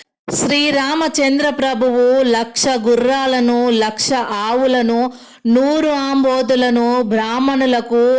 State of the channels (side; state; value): both; identical; correlation 1.00